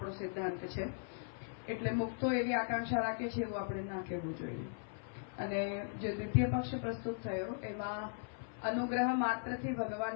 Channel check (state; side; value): silent; right; 52 dB below the other